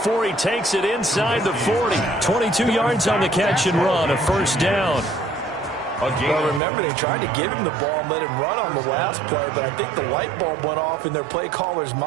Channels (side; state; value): left; drops out; at 6.6 s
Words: he takes it inside the 40. 22 yards on the catch and run, a 1st down. Well, remember, they tried to give him the ball and let him run on the last play, but I think the light bulb went off in their play caller's